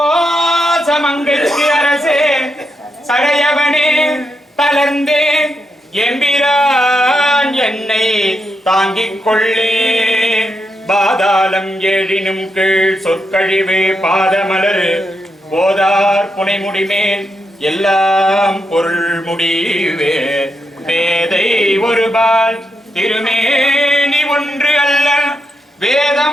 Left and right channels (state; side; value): normal; both; correlation 0.83